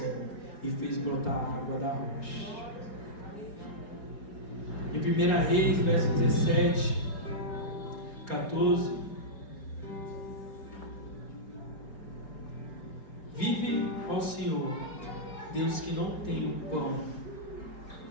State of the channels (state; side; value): late; right; 4.8 ms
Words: e fez brotar água da rocha. Em 1 Reis, verso 17, 14: vive ao Senhor, Deus que não tem pão,